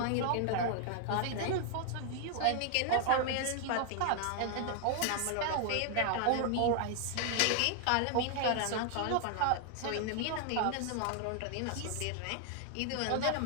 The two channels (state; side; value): different; both; correlation 0.00